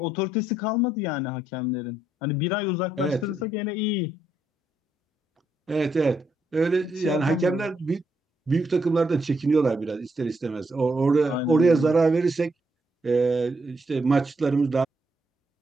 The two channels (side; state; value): both; normal; correlation 0.77